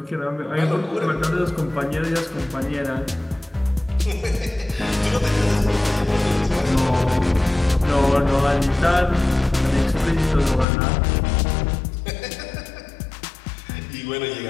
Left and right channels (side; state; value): right; drops out; at 10.7 s